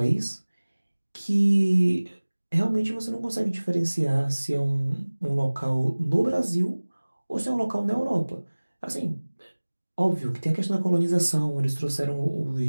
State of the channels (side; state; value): both; inverted; correlation -1.00